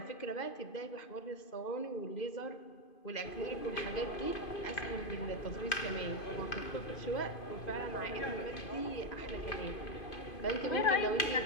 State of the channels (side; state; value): right; late; 2.5 ms